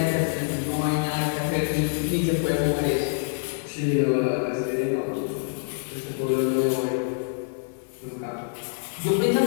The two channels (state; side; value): silent; right; 60 dB below the other